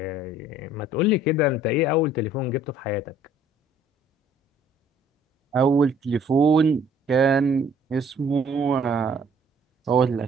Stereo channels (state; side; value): normal; both; correlation 0.57